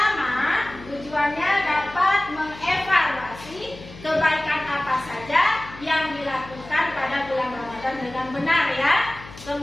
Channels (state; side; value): noise; left; hum, 17 dB below the sound